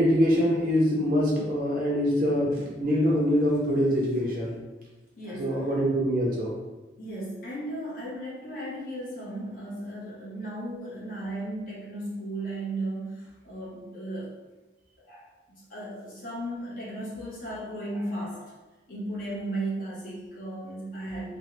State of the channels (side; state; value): both; normal; correlation 0.70